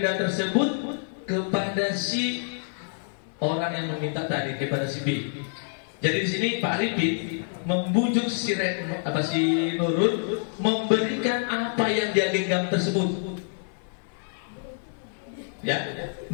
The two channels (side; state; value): right; silent; 60 dB below the other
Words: tersebut kepada si orang yang meminta tadi, kepada si B. Jadi di sini Pak Arifin membujuk si Nurul memberikan apa yang dia genggam tersebut. Ya,